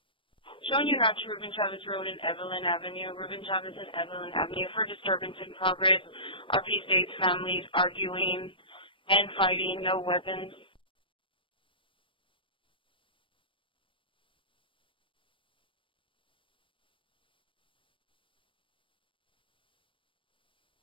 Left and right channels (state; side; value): late; right; 0.25 ms